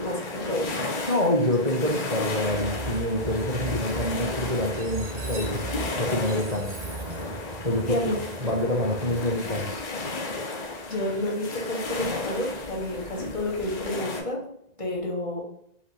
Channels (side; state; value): left; late; 1.9 ms